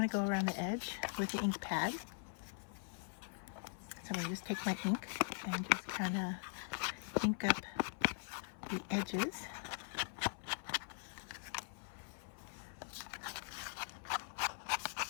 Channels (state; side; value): silent; right; 50 dB below the other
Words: to go around the edge with the ink pad. So I'm going to just take my ink and just kind of ink up the edges.